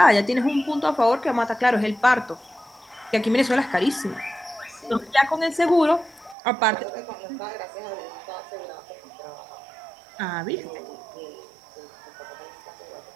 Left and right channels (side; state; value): left; drops out; at 6.4 s